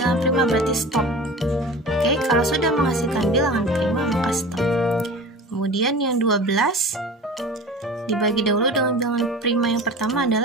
prima, berarti stop. Oke, kalau sudah menghasilkan bilangan prima maka stop. Kemudian yang 12 dibagi dahulu dengan bilangan prima yang pertama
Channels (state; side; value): normal; both; correlation 0.37